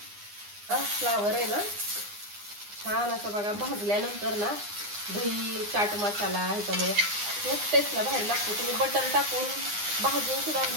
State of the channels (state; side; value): late; left; 9.8 ms